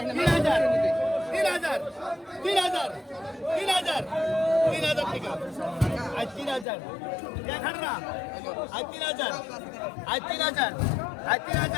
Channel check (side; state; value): right; drops out; at 6.7 s